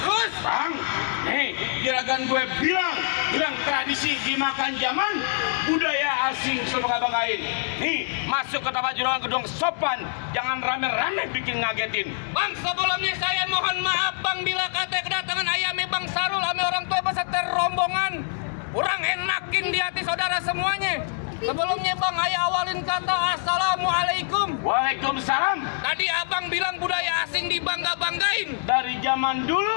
Bang, nih, juragan gue bilang tradisi dimakan zaman, budaya asing sebangga-banggain. Nih, masuk ke tempat juragan gedung sopan, jangan rame-rame bikin ngagetin. Bang, sebelumnya saya mohon maaf, Bang, bila kata kedatangan ayamnya Bang Sarul, ame orang tua beserta rombongan, kurang enakin di hati saudara semuanya. Sebelumnya Bang, ayah awalin kata Assalamualaikum. Waalaikumsalam. Tadi abang bilang budaya asing dibangga-banggain. Dari zaman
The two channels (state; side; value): silent; right; digital silence